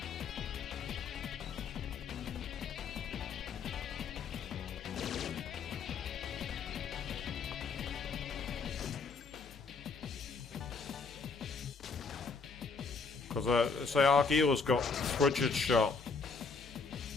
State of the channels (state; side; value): quieter; right; 4.8 dB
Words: Because, say, Argila's got frigid shot.